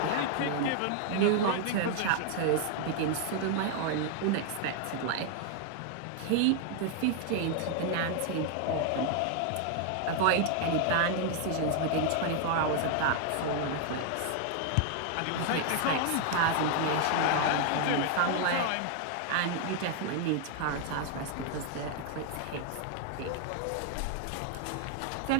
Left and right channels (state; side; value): different; both; correlation 0.00